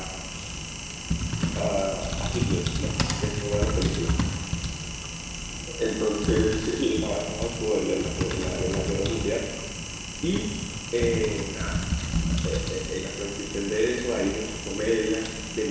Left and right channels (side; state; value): both; identical; correlation 1.00